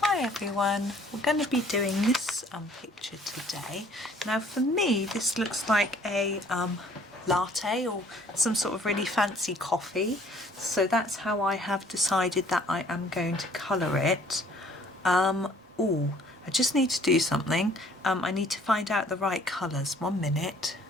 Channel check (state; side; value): normal; both; correlation 0.57